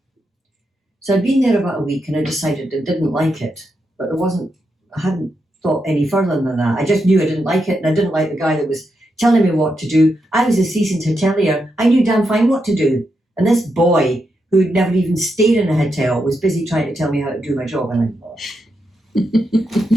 So I'd been there about a week and I decided I didn't like it, but I hadn't thought any further than that. I just knew I didn't like it, and I didn't like the guy that was telling me what to do. I was a seasoned hotelier. I knew damn fine what to do. And this boy, who'd never even stayed in a hotel, was busy trying to tell me how to do my job. And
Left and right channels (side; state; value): both; normal; correlation 0.84